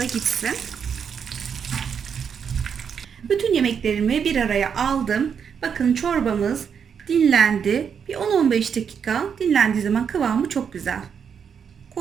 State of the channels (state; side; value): quieter; left; 7.1 dB